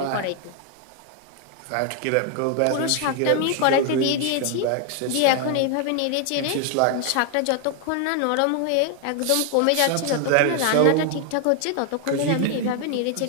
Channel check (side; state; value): both; different; correlation 0.00